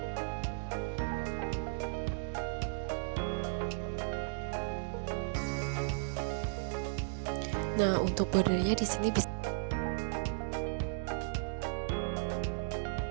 Nah, untuk bordernya di sini bisa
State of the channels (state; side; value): silent; left; digital silence